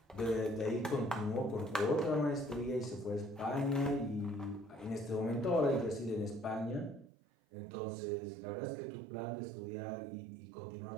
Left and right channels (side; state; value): left; drops out; at 7.1 s